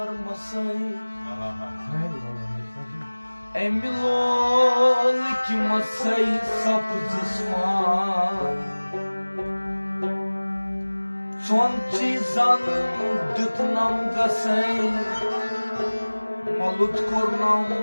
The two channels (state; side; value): inverted; both; correlation -1.00